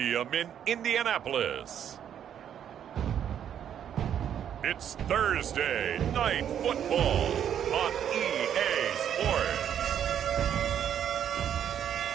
in Indianapolis, it's Thursday Night Football on EA Sports.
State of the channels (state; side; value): quieter; left; 9.4 dB